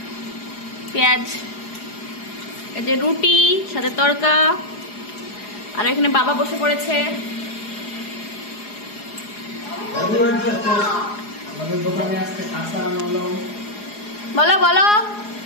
পেঁয়াজ, এই যে রুটি সাথে তড়কা। আর এখানে বাবা বসে পড়েছে। আমাদের দোকানে আজকে কাঁচা আনলো। বলো বলো।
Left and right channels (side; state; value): right; late; 4.8 ms